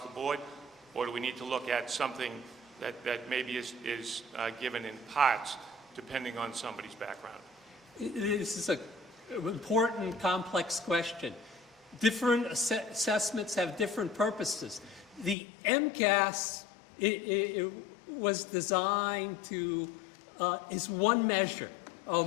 board? Or do we need to look at something that maybe is given in parts, depending on somebody's background? This is an important, complex question. Different assessments have different purposes. The MCAS it was designed to, is one measure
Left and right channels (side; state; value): right; drops out; at 15.4 s